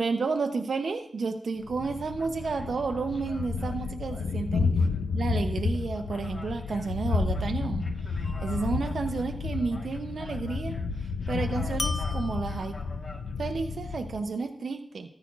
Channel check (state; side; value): normal; both; correlation 0.82